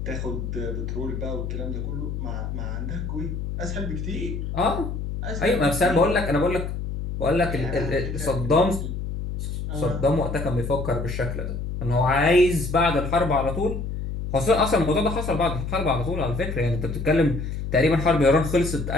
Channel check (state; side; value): noise; left; hum, 5 dB below the sound